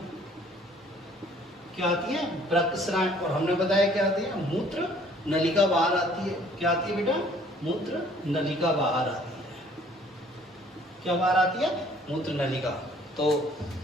क्या आती है, वृक्क शिराएं। और हमने बताया क्या आती है, मूत्र नलिका बाहर आती है। क्या आती है बेटा, मूत्र नलिका बाहर आती है। क्या बाहर आती है, मूत्र नलिका। तो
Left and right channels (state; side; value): normal; both; correlation 0.57